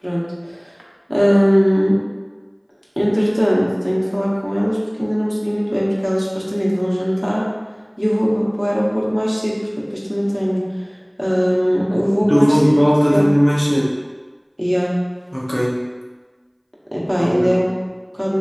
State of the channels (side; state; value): both; identical; correlation 1.00